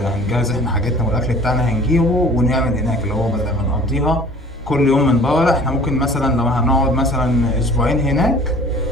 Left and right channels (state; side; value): normal; both; correlation 0.48